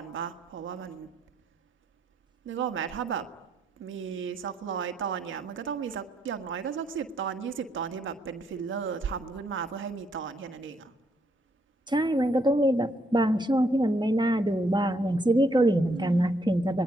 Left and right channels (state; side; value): normal; both; correlation 0.73